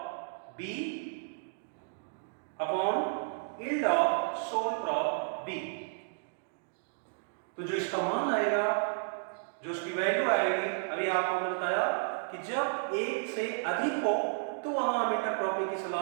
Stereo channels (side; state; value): left; silent; digital silence